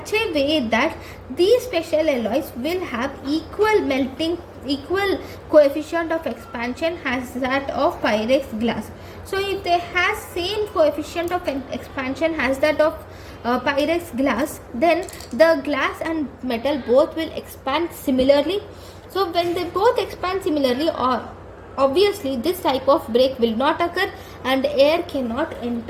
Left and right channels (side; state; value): both; identical; correlation 1.00